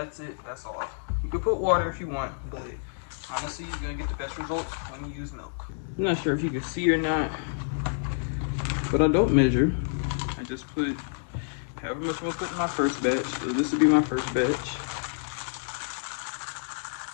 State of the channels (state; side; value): silent; right; digital silence